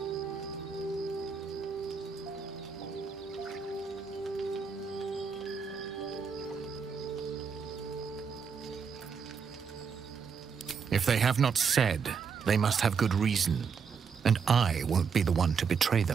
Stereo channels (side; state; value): left; quieter; 6.1 dB